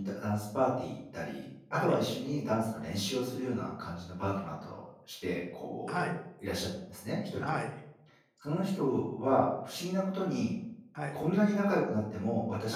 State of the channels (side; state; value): both; identical; correlation 1.00